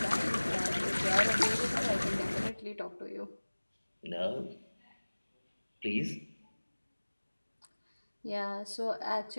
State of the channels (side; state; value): both; inverted; correlation -1.00